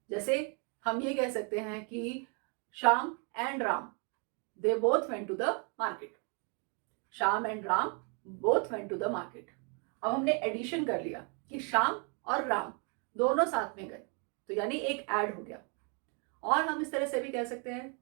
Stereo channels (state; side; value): quieter; left; 37.2 dB